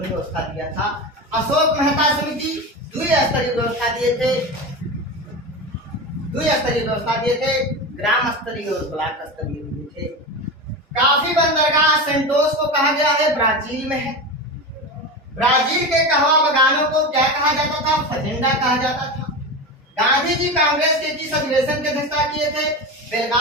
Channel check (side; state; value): both; normal; correlation 0.23